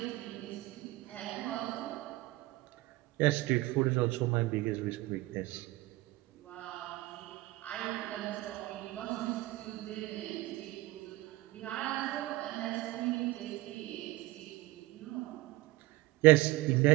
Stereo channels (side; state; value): left; quieter; 18.7 dB